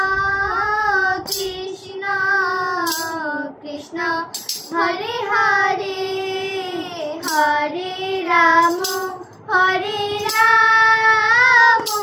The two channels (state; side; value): identical; both; correlation 1.00